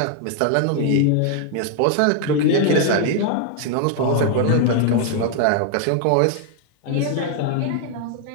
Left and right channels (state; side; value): different; both; correlation 0.00